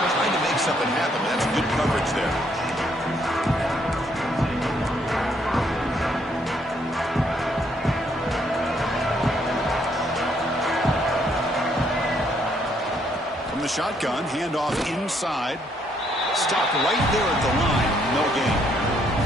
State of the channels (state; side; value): normal; both; correlation 0.70